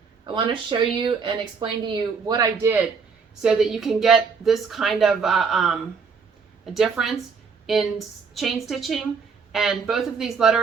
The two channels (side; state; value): left; quieter; 5.5 dB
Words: I want to show you and explain to you what I did so that you can get this kind of a difference in chain stitching. And both of these